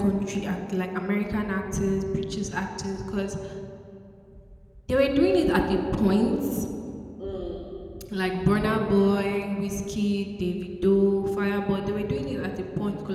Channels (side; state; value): both; identical; correlation 1.00